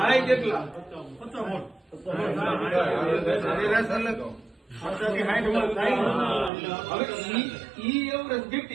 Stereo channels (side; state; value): left; drops out; at 6.5 s